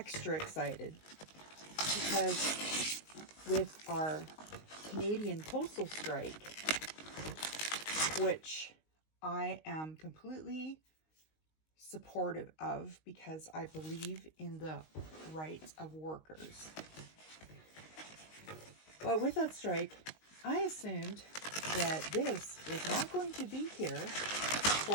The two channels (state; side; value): late; right; 19 ms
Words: excited, because with our Canadian postal strike, which I am completely supportive of because I believe in the rights of workers. But with that strike, I assumed that this was not going to be here